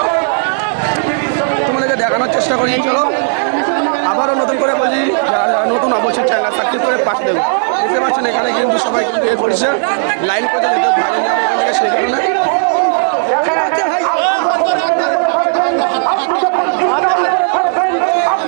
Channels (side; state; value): left; silent; 69 dB below the other